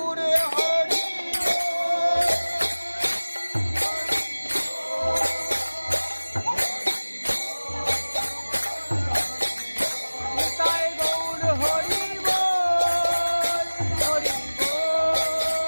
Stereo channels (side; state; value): both; inverted; correlation -1.00